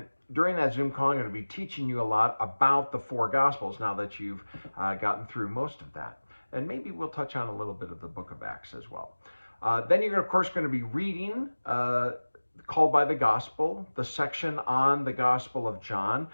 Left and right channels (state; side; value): inverted; both; correlation -1.00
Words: during that Zoom call, I'm going to be teaching you a lot about the four Gospels now that you've gotten through most of that. And maybe we'll touch on a little bit of the book of Acts as well. Then you're, of course, going to be reading Called by the Gospel, the section on the Gospel of John.